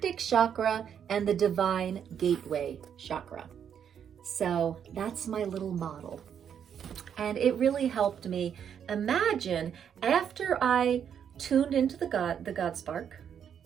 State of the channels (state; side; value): quieter; left; 8.3 dB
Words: chakra, and the divine gateway chakra. So that's my little model. And it really helped me imagine after I tuned into the God spark,